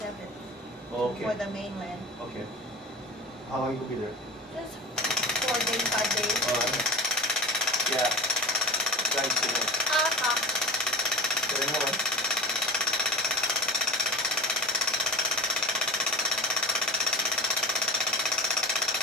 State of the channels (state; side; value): normal; both; correlation 0.34